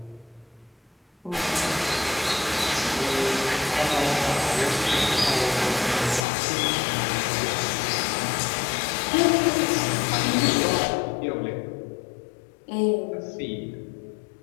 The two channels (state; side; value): drops out; right; at 6.2 s